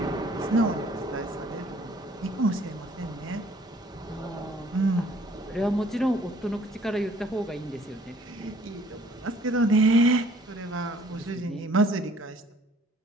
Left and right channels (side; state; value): both; normal; correlation 0.58